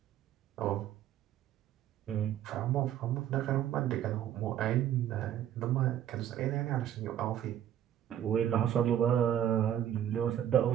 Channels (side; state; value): left; quieter; 10.8 dB